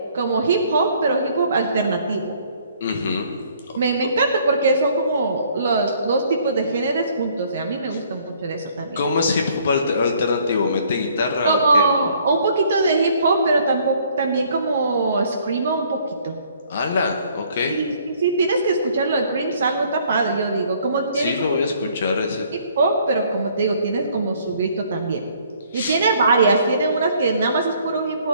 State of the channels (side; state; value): both; inverted; correlation -0.61